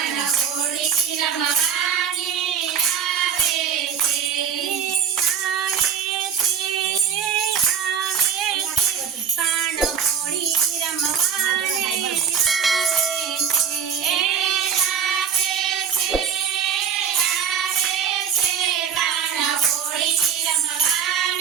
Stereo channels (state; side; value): quieter; left; 7.5 dB